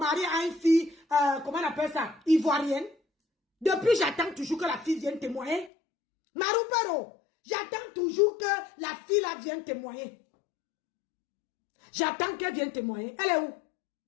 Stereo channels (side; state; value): right; drops out; at 5.7 s